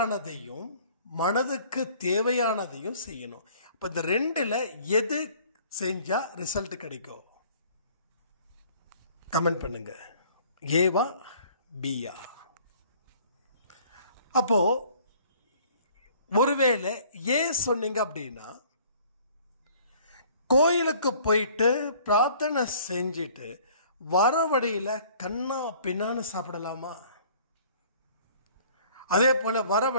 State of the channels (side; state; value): both; inverted; correlation -0.54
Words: மனதுக்கு தேவையானதையும் செய்யணும். அப்ப இந்த ரெண்டுல எது செஞ்சா ரிசல்ட் கிடைக்கும்? கமெண்ட் பண்ணுங்க, ஏவா பியா? அப்போ ஒருவேளை ஏன் சொன்னீங்க அப்படின்னா, கோயிலுக்கு போயிட்டு பிரார்த்தனை செஞ்சுட்டு வர வழியில் கண்ணா பின்னான்னு சாப்பிடலாமா? அதே போல் வர